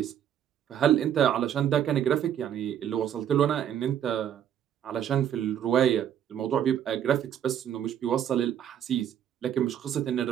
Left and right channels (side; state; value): left; quieter; 9.8 dB